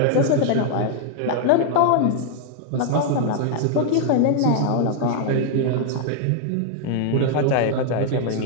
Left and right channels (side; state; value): both; different; correlation 0.00